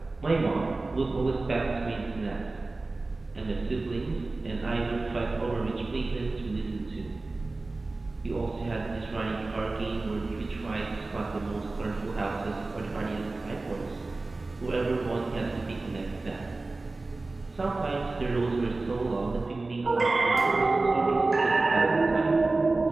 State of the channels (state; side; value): quieter; left; 3.3 dB